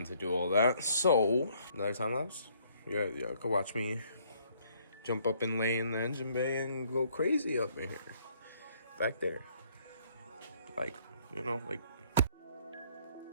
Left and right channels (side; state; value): both; inverted; correlation -0.65